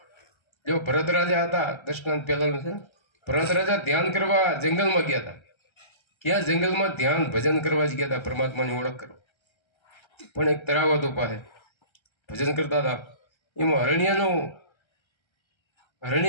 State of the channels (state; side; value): late; right; 1.3 ms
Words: જો ભરત રાજા હતા, દશનાથ પહેલાનું છે ને, ભરત રાજા ધ્યાન કરવા જંગલમાં ગયા હતા. ક્યાં જંગલમાં ધ્યાન ભજન કરવા જ ગયા હતા, પરમાત્માની ઓળખ કરવા. પણ એક તળાવ હતું પાસે, ભજન કરતા હતા. એમાં હરણી